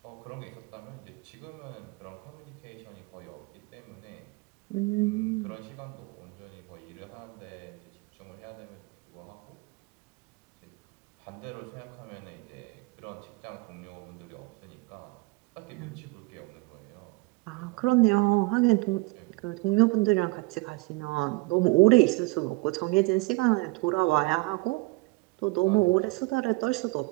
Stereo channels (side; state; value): left; quieter; 25.1 dB